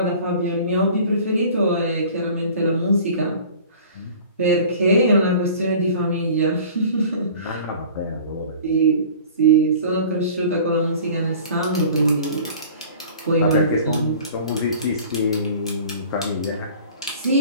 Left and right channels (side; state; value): both; inverted; correlation -0.45